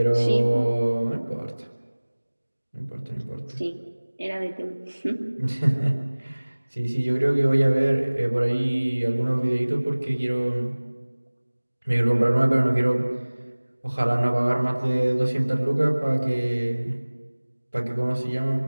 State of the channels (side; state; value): both; inverted; correlation -1.00